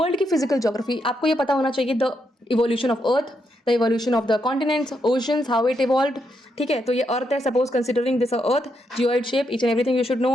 की physical geography आपको ये पता होना चाहिए, the evolution of Earth, the evolution of the continents, oceans, how it evolved. ठीक है, तो ये अर्थ है, suppose considering this earth, geoid shape, each and everything you should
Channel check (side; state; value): both; normal; correlation 0.80